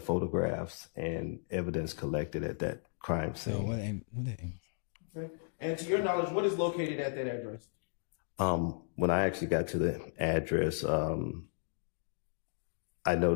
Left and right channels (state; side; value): silent; right; digital silence